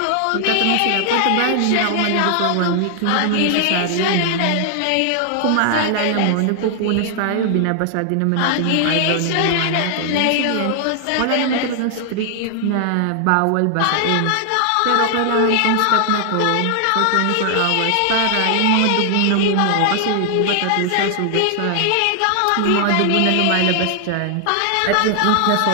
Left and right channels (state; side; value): different; both; correlation 0.00